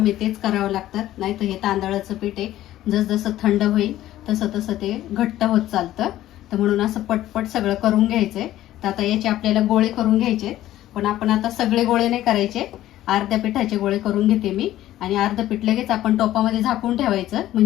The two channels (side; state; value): right; quieter; 13.9 dB